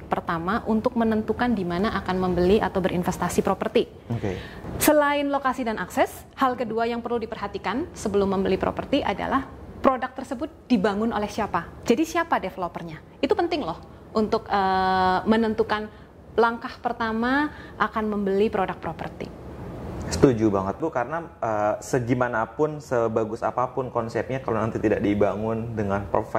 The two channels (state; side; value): identical; both; correlation 1.00